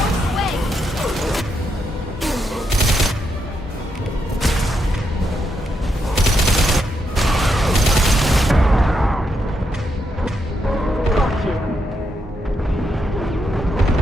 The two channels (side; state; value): both; normal; correlation 0.81